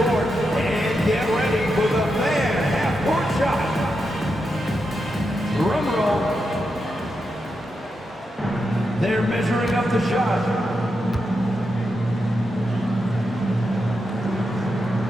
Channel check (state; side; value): normal; both; correlation 0.86